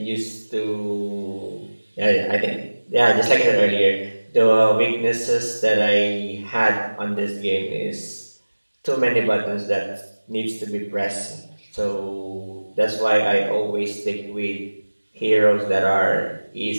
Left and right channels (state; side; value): inverted; both; correlation -1.00